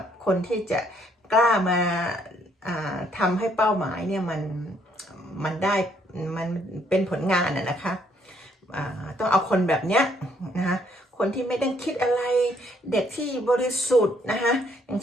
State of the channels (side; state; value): both; normal; correlation 0.68